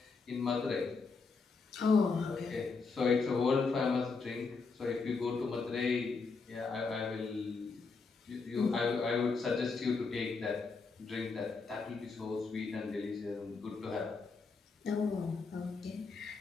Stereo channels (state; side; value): quieter; right; 4.5 dB